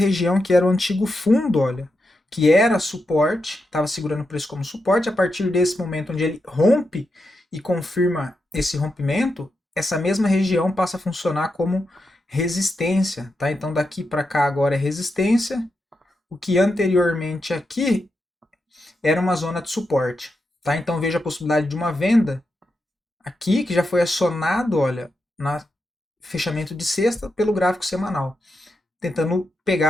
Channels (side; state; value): both; normal; correlation 0.86